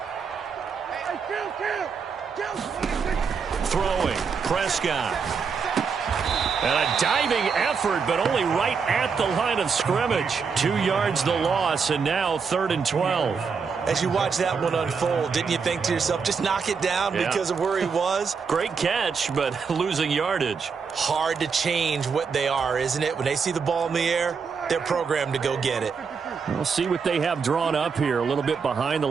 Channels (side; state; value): left; quieter; 5.7 dB